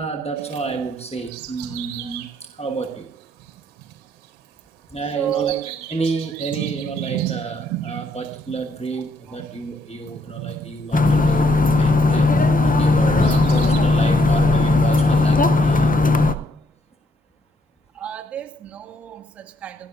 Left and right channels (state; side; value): normal; both; correlation 0.71